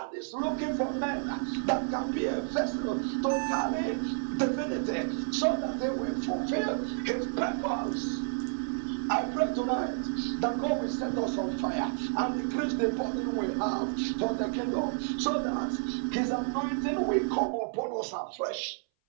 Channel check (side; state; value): left; silent; 58 dB below the other